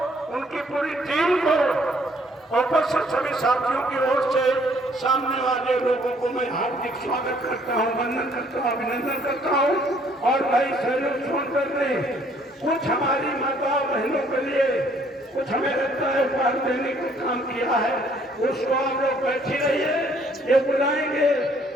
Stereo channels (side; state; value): both; normal; correlation 0.63